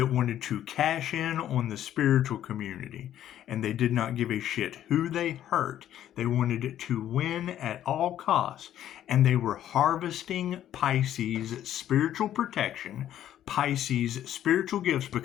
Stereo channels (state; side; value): quieter; right; 11.5 dB